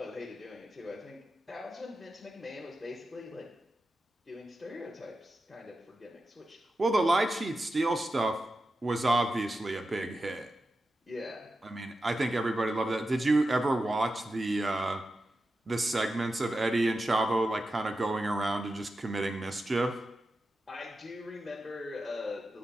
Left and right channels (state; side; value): normal; both; correlation 0.91